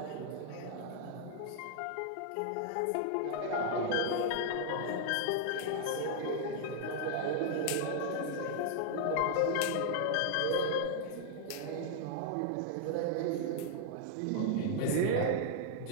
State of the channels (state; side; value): different; both; correlation 0.00